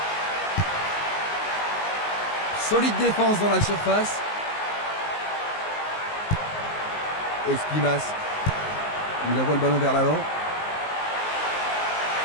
Solide défense dans la surface. Esquimas. Il envoie le ballon vers l'avant.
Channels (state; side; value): late; right; 19 ms